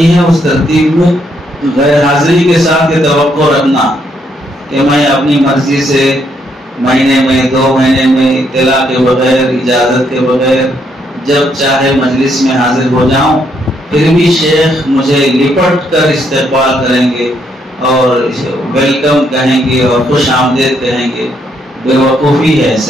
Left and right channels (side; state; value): both; normal; correlation 0.74